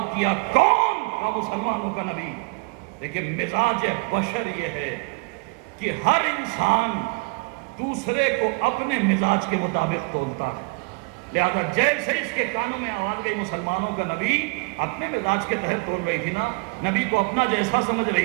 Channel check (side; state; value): left; quieter; 32.5 dB